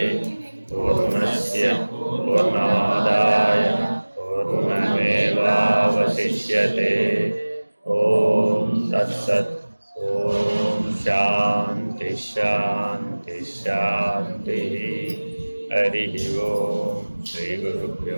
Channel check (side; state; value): both; inverted; correlation -1.00